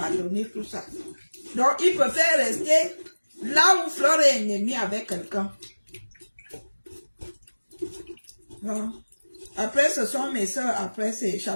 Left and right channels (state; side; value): inverted; both; correlation -1.00